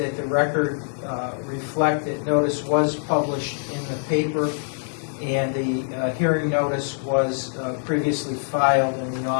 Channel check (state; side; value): silent; right; digital silence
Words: the record reflect that notice was published in the paper, and the hearing notice was previously filed in the